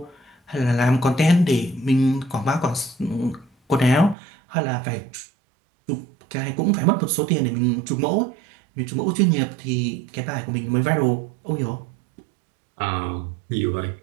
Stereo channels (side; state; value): left; drops out; at 4.2 s